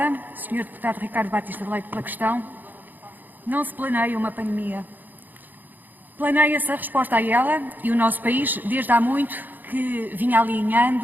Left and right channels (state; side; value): late; left; 0.086 ms